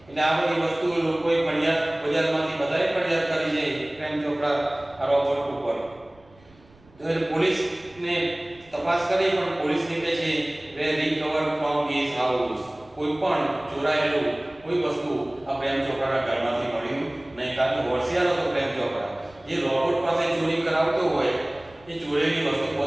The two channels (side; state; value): right; noise; rumble, 27 dB below the sound